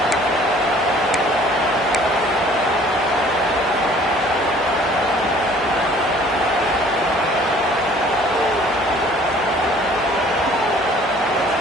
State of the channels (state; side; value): normal; both; correlation 0.54